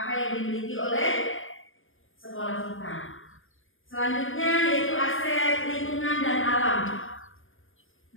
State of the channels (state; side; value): late; right; 0.58 ms